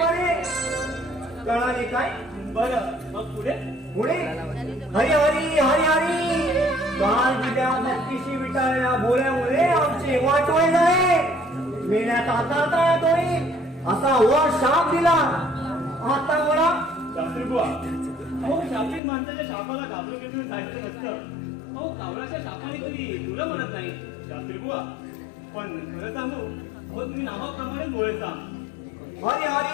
बरे. कळाले काय? बरं मग पुढे पुढे हरी हरी हरी हरी. काल विद्या भक्तीशी विटाळल्या बोल्यामुळे आमचे वाटोळे झाले. मेल्यात आता येतोय असा वर शाप दिला. आता मला शास्त्री बुवा, अहो शापित माणसाच्या शापाला घाबरून घेऊन जायचं नसतं. अहो कावळाच्या शापाने कधी तुला म्हणत नाही शास्त्री बुवा. पण खरं सांगू, अहो तुम्ही नावाप्रमाणे बोलायचा हरी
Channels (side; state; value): right; drops out; at 19.0 s